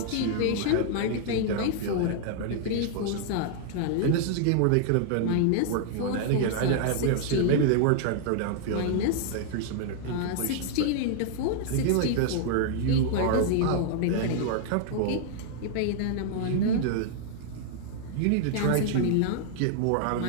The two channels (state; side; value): different; both; correlation -0.01